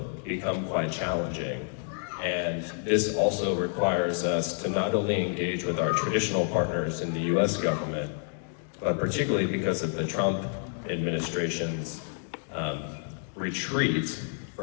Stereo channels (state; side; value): silent; right; 55 dB below the other